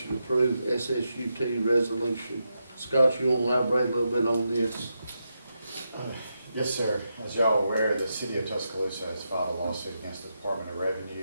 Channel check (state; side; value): inverted; both; correlation -0.85